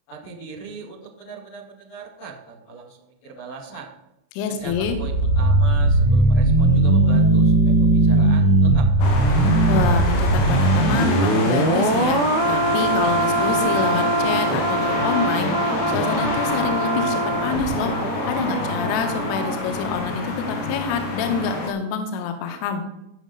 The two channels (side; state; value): right; late; 31 ms